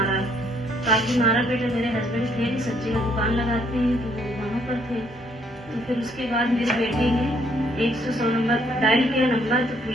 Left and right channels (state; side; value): normal; both; correlation 0.67